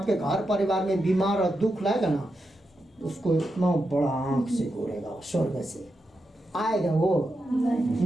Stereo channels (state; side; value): normal; both; correlation 0.87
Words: घर परिवार में बीमार और दुख लाएगा ना, उसको इतना बड़ा आंख से घूरेगा, स्वर्ग से आएगा, वो